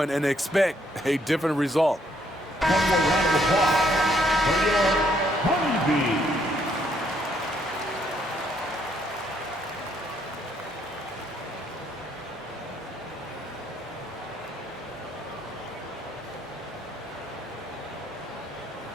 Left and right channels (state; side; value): normal; both; correlation 0.70